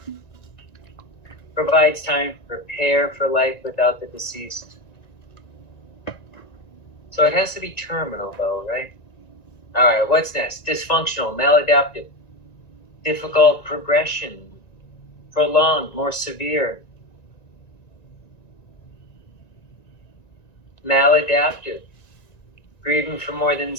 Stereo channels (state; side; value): late; right; 1.9 ms